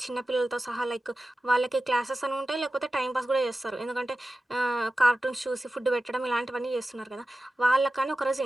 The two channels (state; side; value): normal; both; correlation 0.94